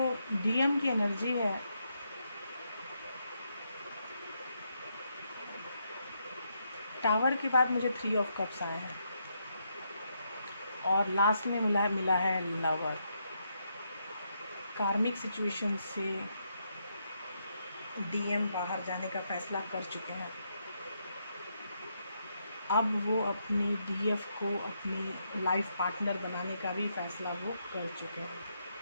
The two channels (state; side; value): inverted; both; correlation -0.79